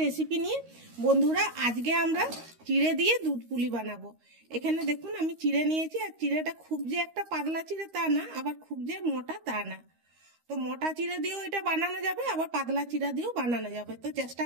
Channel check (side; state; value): left; late; 13 ms